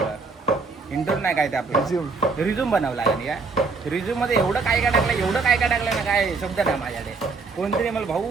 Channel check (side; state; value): left; quieter; 4.3 dB